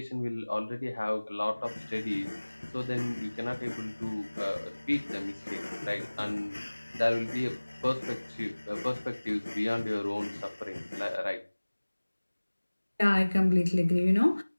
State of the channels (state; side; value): inverted; both; correlation -1.00